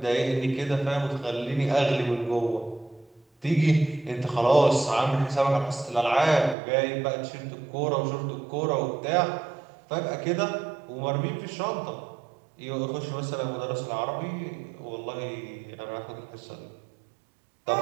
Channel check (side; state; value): left; drops out; at 6.6 s